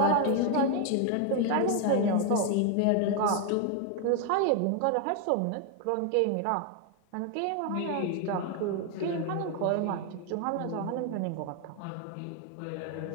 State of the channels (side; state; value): both; different; correlation 0.01